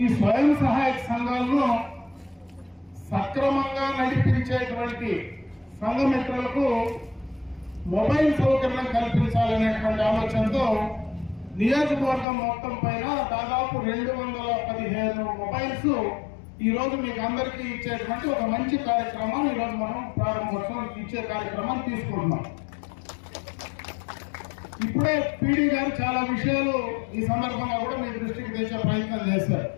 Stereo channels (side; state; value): right; drops out; at 12.2 s